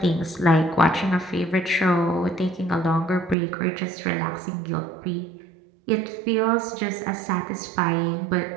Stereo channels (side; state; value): left; drops out; at 3.4 s